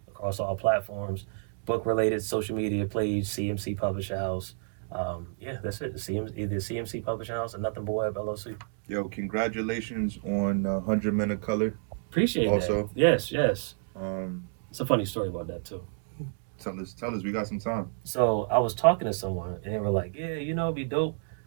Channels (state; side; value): silent; left; digital silence